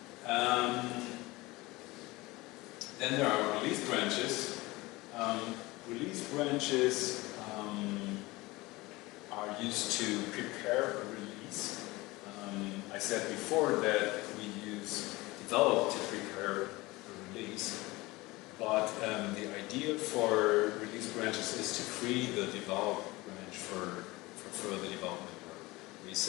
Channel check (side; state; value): right; quieter; 21.3 dB